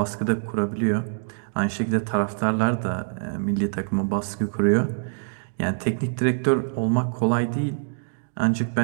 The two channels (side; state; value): left; silent; digital silence